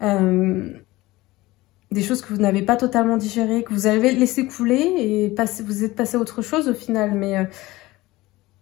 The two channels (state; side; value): quieter; right; 19.2 dB